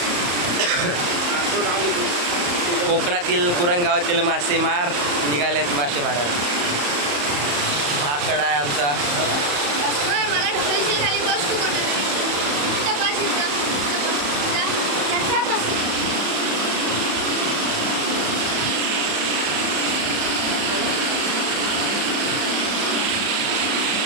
कोकणातील कुरंगावातील मासेमार निघालेत मासे मारायला. हा कडा आहे आमचा.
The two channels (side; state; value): left; late; 34 ms